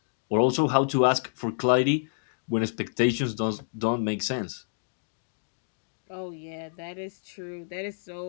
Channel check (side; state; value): right; silent; digital silence